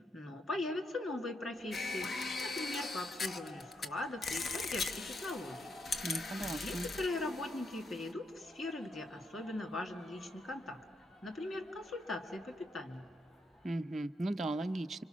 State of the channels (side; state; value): both; normal; correlation 0.79